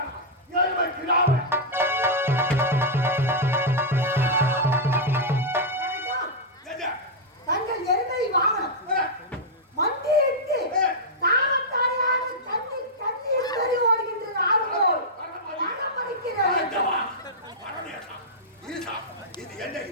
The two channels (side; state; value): both; normal; correlation -0.07